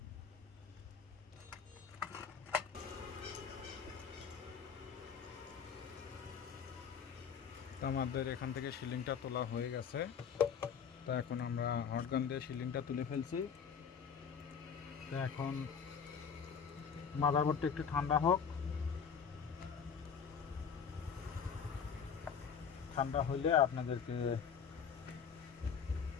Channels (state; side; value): quieter; right; 6.8 dB